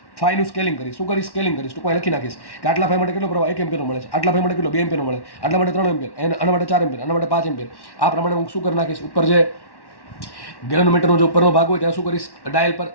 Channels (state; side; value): late; right; 1.1 ms